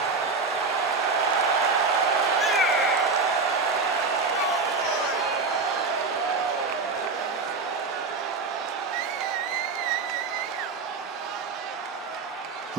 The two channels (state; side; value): quieter; left; 4.3 dB